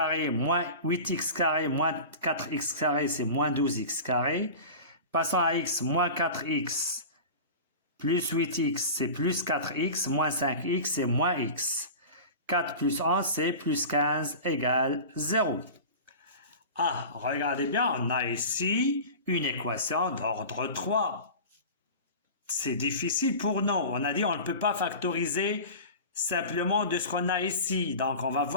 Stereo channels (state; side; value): inverted; both; correlation -0.33